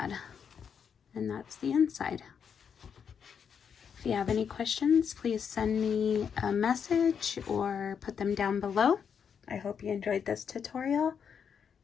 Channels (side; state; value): right; quieter; 7.2 dB